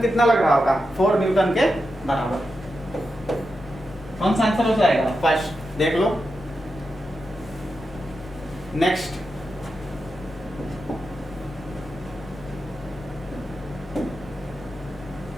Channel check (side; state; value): both; normal; correlation 0.88